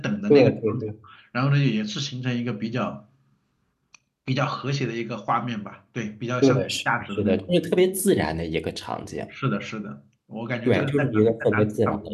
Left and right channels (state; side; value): identical; both; correlation 1.00